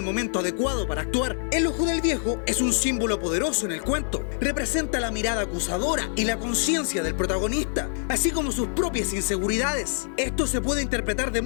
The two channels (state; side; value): silent; right; digital silence